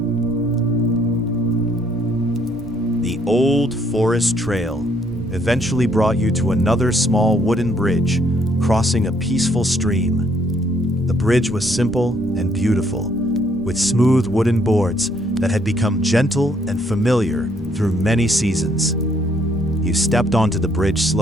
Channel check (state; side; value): normal; both; correlation 0.67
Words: The old forest trail eventually brought you to another small wooden bridge crossing a peaceful stream. The bridge was simple and beautiful, with smooth wooden boards that had become gentle and familiar through many seasons. You stepped onto the bridge